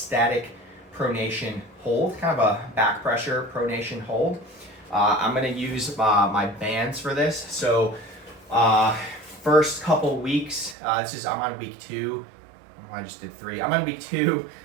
pronation hold, kind of a back pressure pronation hold. I'm going to use my bands for this. So first couple weeks, I'm on week 2. I just did 3. I'm on week 2.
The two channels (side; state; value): left; drops out; at 10.8 s